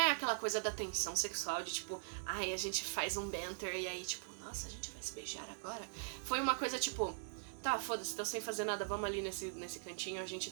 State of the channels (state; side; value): silent; left; digital silence